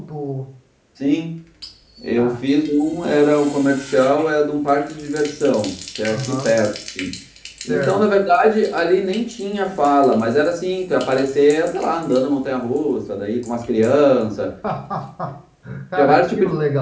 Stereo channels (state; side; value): identical; both; correlation 1.00